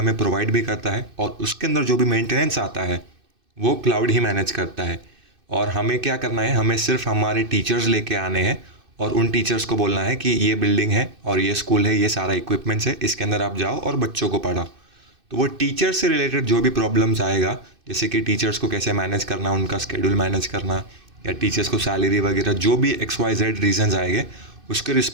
प्रोवाइड भी करता है और उसके अंदर जो भी मेंटेनेंस आता है वो क्लाउड ही मैनेज करता है। और हमें क्या करना है, हमें सिर्फ हमारे टीचर्स लेके आने हैं और उन टीचर्स को बोलना है कि ये बिल्डिंग है और ये स्कूल है, ये सारा इक्विपमेंट्स है, इसके अंदर आप जाओ और बच्चों को पढ़ाओ। तो वो टीचर से रिलेटेड जो भी प्रॉब्लम्स आएगा, जैसे कि टीचर्स को कैसे मैनेज करना, उनका स्केड्यूल मैनेज करना या टीचर्स को सैलरी वगैरह, जो भी XYZ रीजंस आएंगे उसकी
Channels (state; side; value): late; left; 2.6 ms